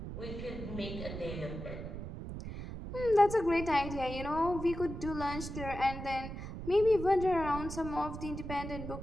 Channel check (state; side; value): noise; right; rumble, 8 dB below the sound